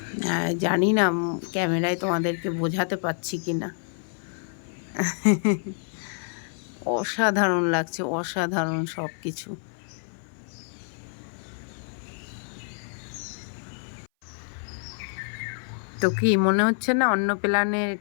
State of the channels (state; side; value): silent; right; 59 dB below the other